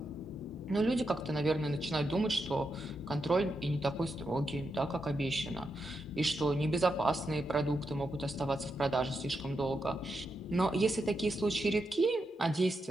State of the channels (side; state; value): both; normal; correlation 0.85